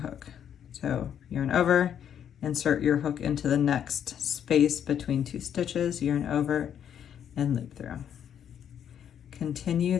So yarn over, insert your hook into the next space between 2 stitches, yarn over and loop through. Continue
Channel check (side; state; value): right; quieter; 9.1 dB